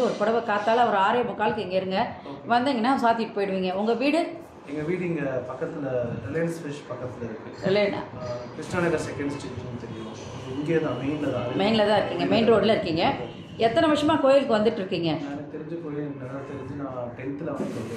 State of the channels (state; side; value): identical; both; correlation 1.00